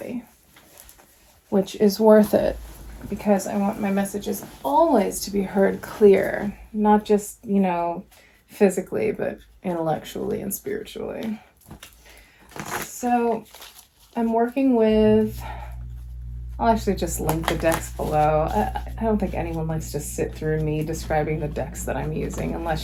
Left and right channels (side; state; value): both; identical; correlation 1.00